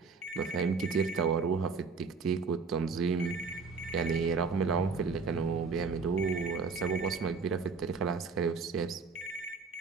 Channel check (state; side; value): quieter; left; 4.8 dB